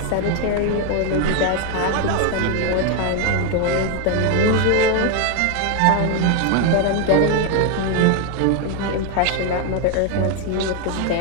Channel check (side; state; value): both; different; correlation 0.01